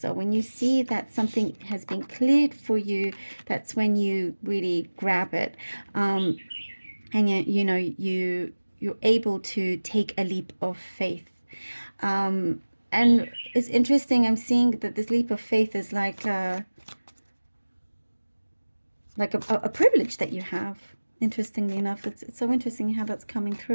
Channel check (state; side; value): inverted; both; correlation -1.00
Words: When you see that something has been cleared for you, that's when you really grab it. And you're able to take a leap of faith. And it's interesting, I'm seeing that this leap of faith is like a privilege that you have. Interestingly enough, it's so interesting how that's coming